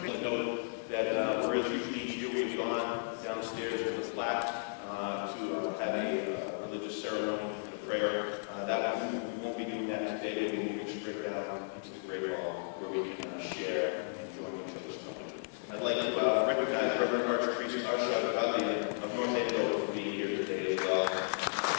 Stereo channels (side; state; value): right; silent; 55 dB below the other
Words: I'll note that whereas usually each year we have gone downstairs to the flat to have a religious ceremony and a prayer, we won't be doing that today. We'll be moving straight down into the Great Hall where we can share and join each other's company. I'd like to recognize Reverend Archpriest Arshad Gadlian of North Andover for being here today as well.